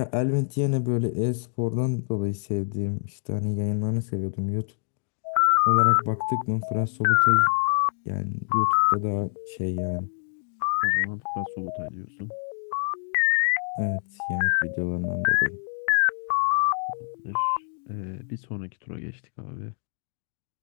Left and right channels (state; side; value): silent; right; digital silence